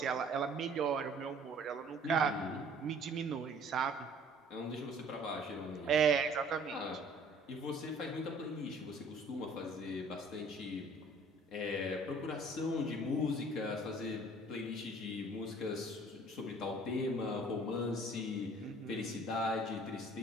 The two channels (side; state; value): both; normal; correlation 0.53